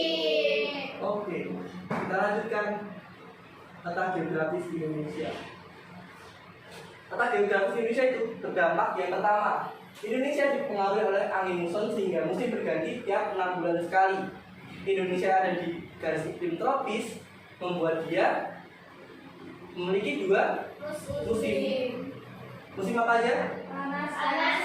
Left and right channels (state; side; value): identical; both; correlation 1.00